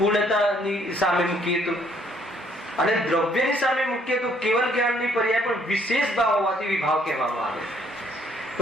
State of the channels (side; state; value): both; normal; correlation 0.65